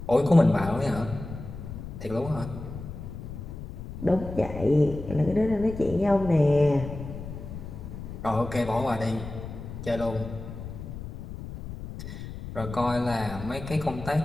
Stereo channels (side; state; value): left; noise; rumble, 10 dB below the sound